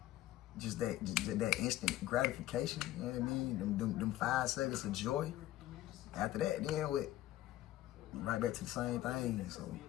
Just that instant gratification, you know what I mean? Them 5 seconds of joy. After that, then right back to the same thing. So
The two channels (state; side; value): quieter; right; 14.7 dB